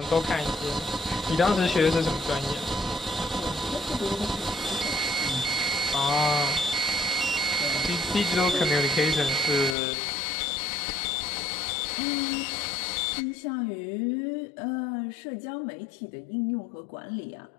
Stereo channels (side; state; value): right; drops out; at 9.8 s